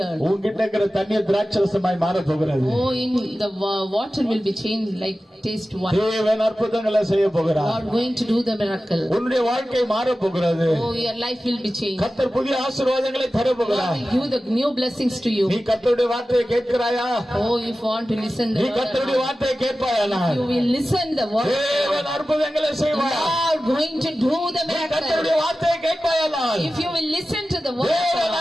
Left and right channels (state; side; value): normal; both; correlation 0.95